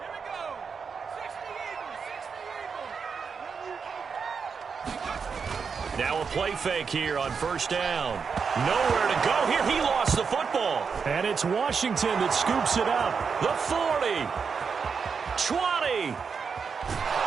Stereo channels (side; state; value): left; quieter; 5.8 dB